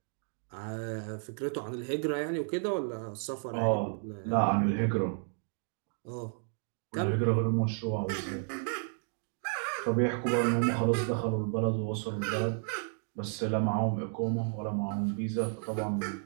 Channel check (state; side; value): silent; left; 56 dB below the other